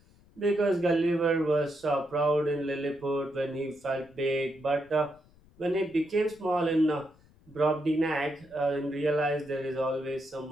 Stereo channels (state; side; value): noise; left; rumble, 28 dB below the sound